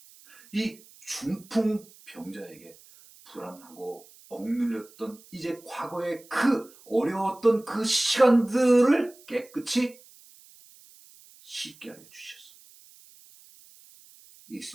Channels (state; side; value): noise; right; hiss, 24 dB below the sound